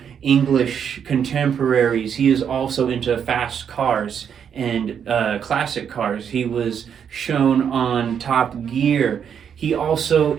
English contemporaries, he is also into fast cars and classic cars. He was shown on Top Gear. He also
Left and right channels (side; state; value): left; quieter; 7.9 dB